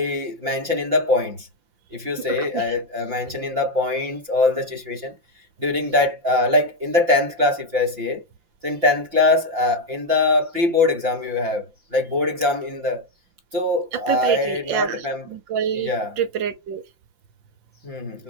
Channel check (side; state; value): left; late; 5.8 ms